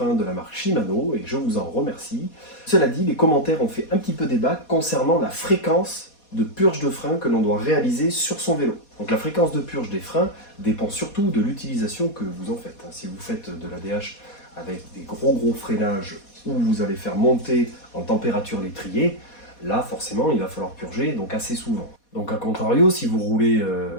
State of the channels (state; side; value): late; right; 4.2 ms